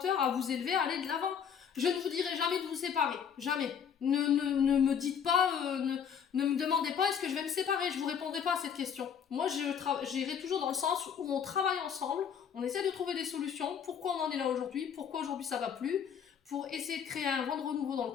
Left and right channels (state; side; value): quieter; right; 7.7 dB